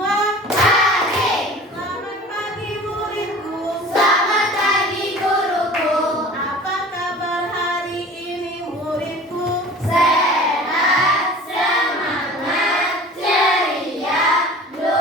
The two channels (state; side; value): normal; both; correlation 0.42